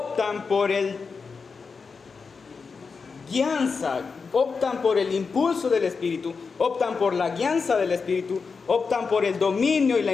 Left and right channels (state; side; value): quieter; right; 5.0 dB